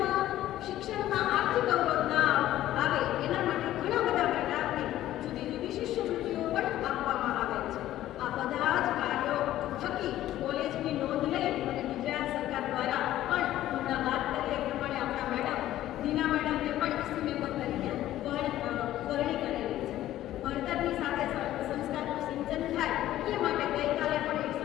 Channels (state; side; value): quieter; right; 13.7 dB